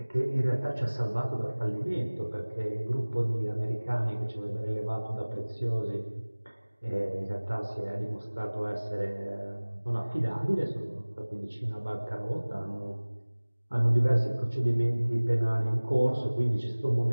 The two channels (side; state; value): both; inverted; correlation -1.00